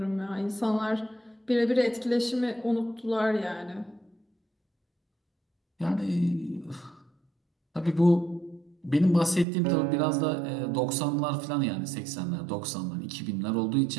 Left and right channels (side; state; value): left; drops out; at 9.5 s